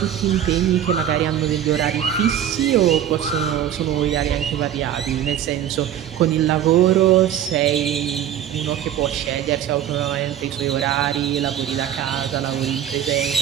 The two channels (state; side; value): quieter; left; 10.4 dB